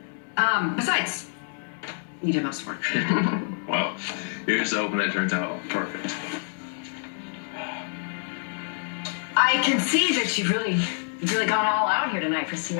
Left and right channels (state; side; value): silent; right; digital silence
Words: Besides, you did most work. Well, here's hoping that turns out perfect. I can see that you've really gone all out here tonight for